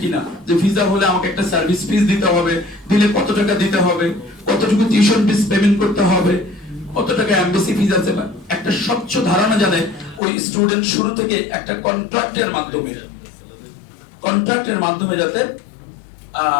কিনা যে ভিসা হলে আমাকে একটা সার্ভিস ফিস দিতে হবে, দিলে কত টাকা দিতে হবে, কতটুকু টিউশন ফিস পেমেন্ট করতে হবে, কত টাকা এমবেসি ফিস আছে, একটা স্বচ্ছ ধারণা জানে ওই স্টুডেন্ট শুরু থেকে একটা কন্ট্রাক্টের মাধ্যমে যাতে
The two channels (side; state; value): right; drops out; at 10.2 s